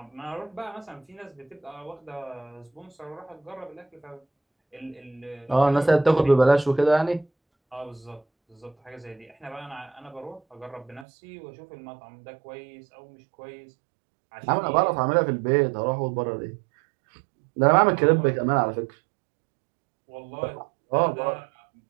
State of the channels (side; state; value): left; drops out; at 11.1 s